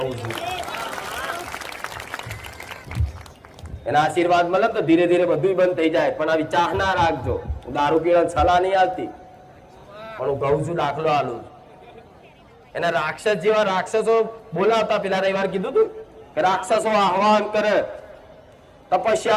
છું. એના આશીર્વાદ મળે તો ધીરે ધીરે બધું બંધ થઈ જાય. પણ આવી ચાહ ના રાખજો. દારૂ પીવા સલાહ નહીં આવતી, પણ હું કહું છું, દાખલો આલું. એના રાક્ષસ જેવા રાક્ષસો બોલાવતા. પેલા રવિવાર કીધું તું કે રાક્ષસો આહવાન કરે,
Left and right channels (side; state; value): both; identical; correlation 1.00